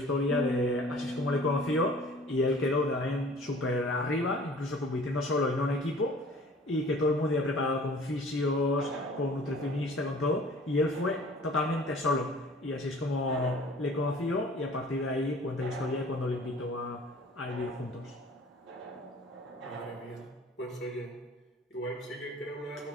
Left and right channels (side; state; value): both; normal; correlation 0.49